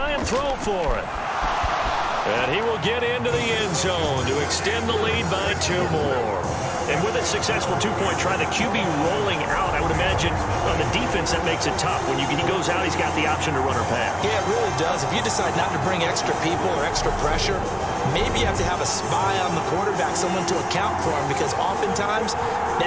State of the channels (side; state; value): both; identical; correlation 1.00